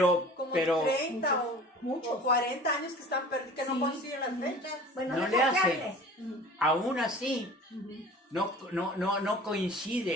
Como pero 30 muchos. o 40 años que están perdidos, que no Sí. coinciden las fechas. Bueno, no deja le que hace. hable. aún así no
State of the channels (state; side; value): normal; both; correlation 0.42